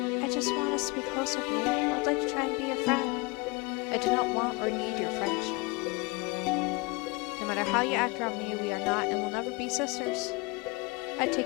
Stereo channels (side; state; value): right; quieter; 26.6 dB